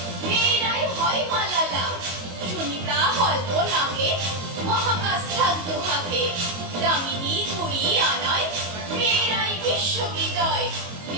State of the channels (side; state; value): left; late; 22 ms